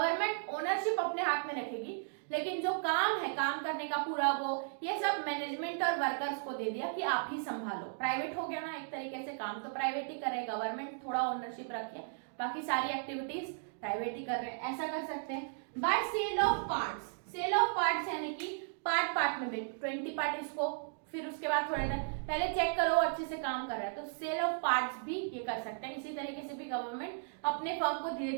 ओनरशिप अपने हाथ में रखेगी लेकिन जो काम है, काम करने का पूरा वो, ये सब मैनेजमेंट और वर्कर्स को दे दिया कि आप ही संभालो। प्राइवेट हो गया ना एक तरीके से, काम तो प्राइवेट ही करे, गवर्नमेंट थोड़ा ओनरशिप रखिए, बाकी सारी एक्टिविटीज प्राइवेट ही कर रहे हैं, ऐसा कर सकते हैं। By sale of parts, sale of parts यानी कि पार्ट पार्ट में 20 पार्ट इसको, फिर उसके बाद थोड़ा पहले चेक करो अच्छे से काम कर रहा है, तो सेल ऑफ पार्ट्स भी ये कर सकते हैं। इसी तरीके से भी गवर्नमेंट अपने फर्म को धीरे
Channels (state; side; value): silent; left; digital silence